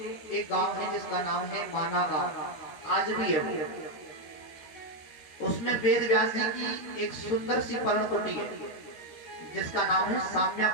एक गांव है जिसका नाम है माना गांव, आज भी है। उसमें वेद व्यास जी की एक सुंदर सी पर्णकुटी है जिसका नाम है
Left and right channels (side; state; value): right; late; 13 ms